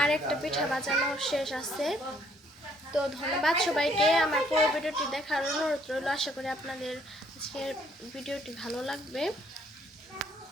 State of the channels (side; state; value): both; normal; correlation 0.65